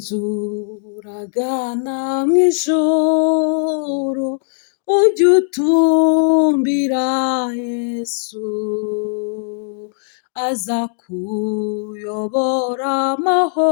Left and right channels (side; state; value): right; silent; 64 dB below the other